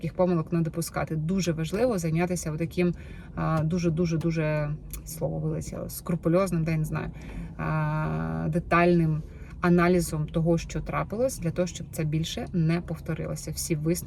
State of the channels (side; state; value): both; identical; correlation 1.00